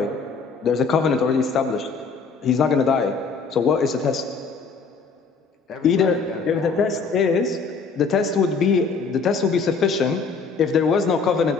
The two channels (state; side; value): quieter; right; 4.9 dB